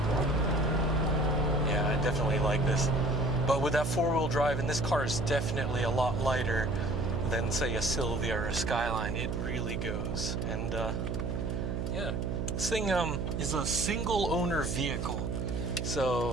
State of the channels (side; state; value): right; noise; hum, 2 dB below the sound